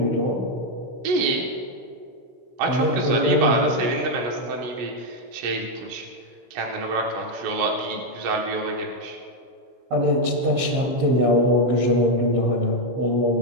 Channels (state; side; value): late; left; 15 ms